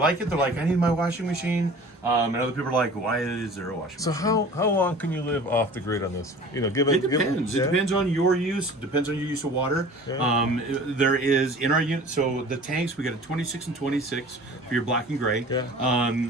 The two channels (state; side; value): normal; both; correlation 0.43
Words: it. They're like, I need my washing machine, and other people are like, why is there a washing So machine? how long can you live off the grid on this? Given It depends. It depends on your use. It depends on your use of water. Yeah. There is in our unit. So the tanks, we got a 26 and 26 for your black and gray. Yeah.